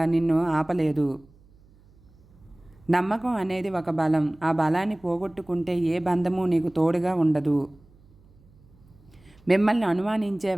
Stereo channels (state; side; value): noise; right; hum, 28 dB below the sound